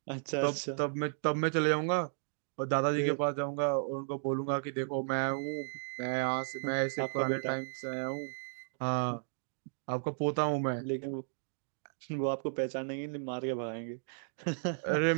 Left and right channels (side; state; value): left; silent; digital silence